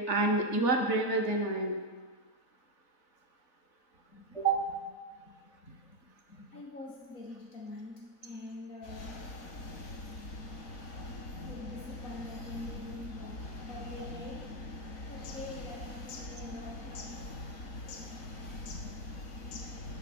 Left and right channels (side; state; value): right; late; 4.0 ms